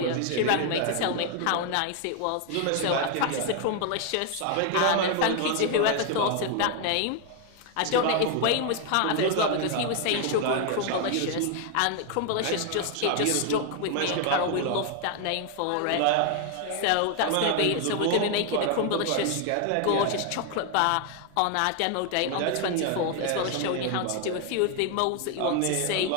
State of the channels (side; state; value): both; different; correlation 0.00